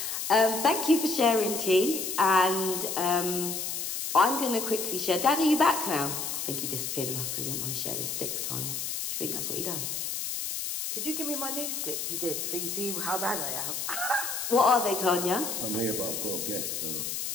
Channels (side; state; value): left; noise; hiss, 3 dB below the sound